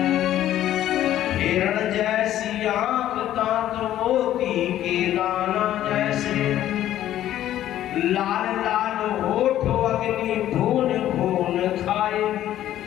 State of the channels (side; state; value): right; quieter; 12.5 dB